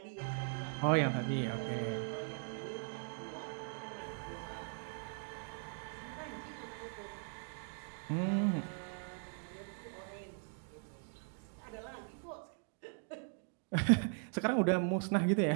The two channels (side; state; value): left; silent; 51 dB below the other